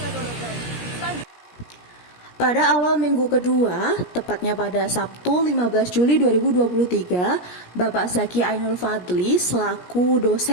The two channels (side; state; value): right; late; 17 ms